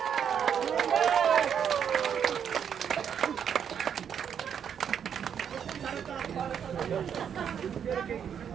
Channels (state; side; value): quieter; left; 8.1 dB